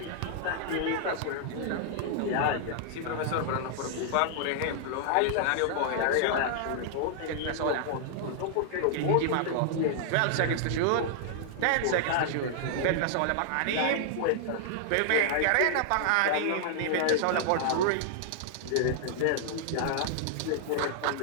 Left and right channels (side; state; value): both; different; correlation -0.01